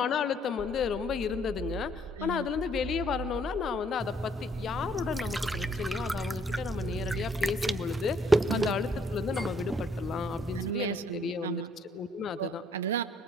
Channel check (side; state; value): both; normal; correlation 0.66